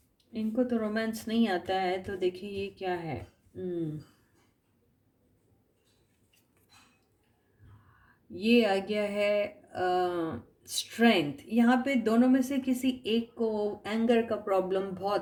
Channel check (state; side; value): identical; both; correlation 1.00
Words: इनको तो रोमांस नहीं आता है, तो देखिए ये क्या है। ये आ गया है स्ट्रेंथ। यहाँ पे दोनों में से किसी एक को एंगर का प्रॉब्लम